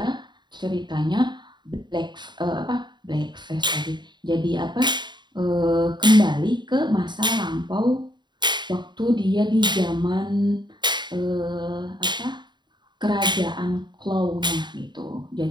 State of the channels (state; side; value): late; left; 0.22 ms